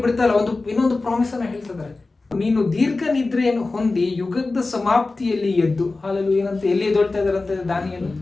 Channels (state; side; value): quieter; right; 3.5 dB